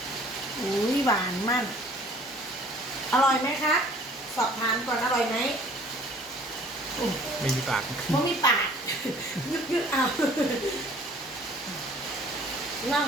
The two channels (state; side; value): normal; both; correlation 0.54